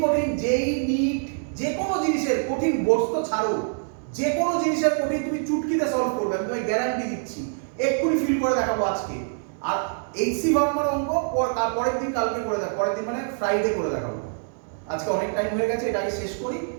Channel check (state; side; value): silent; left; digital silence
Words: কঠিন যেই নিট যে কোনো জিনিসের কঠিন বস্তু ছাড়ো, যে কোনো জিনিসের কঠিন তুমি চুটকিতে সলভ করবে, আমি তোমায় গ্যারান্টি দিচ্ছি। এক্ষুনি ফিল করে দেখাবো আজকে। আর এইচসি ভার্মার অঙ্ক পরের দিন, কালকে করে দেখাবো, পরের দিন মানে ফ্রাইডে করে দেখাবো। আজকে অনেক টাইম হয়ে গেছে, এটাকে শেষ করি,